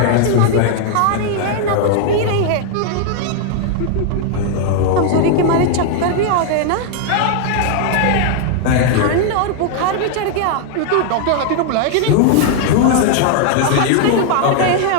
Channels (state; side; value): different; both; correlation 0.00